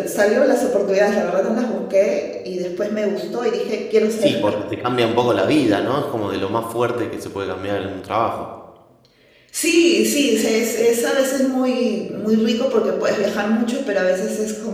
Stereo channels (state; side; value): identical; both; correlation 1.00